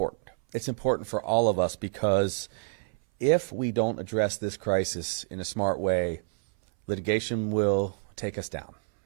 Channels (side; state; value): left; silent; 59 dB below the other